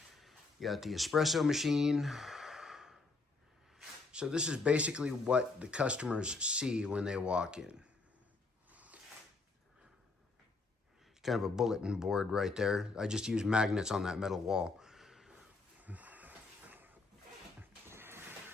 You got the espresso machine. So this is basically what the customers see when they walk in. Kind of a bulletin board right there. I just use magnets on that metal wall.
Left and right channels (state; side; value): quieter; right; 3.7 dB